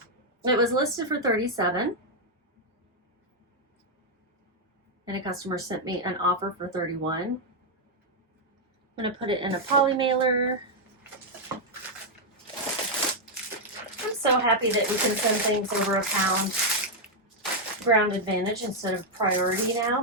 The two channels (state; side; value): normal; both; correlation -0.02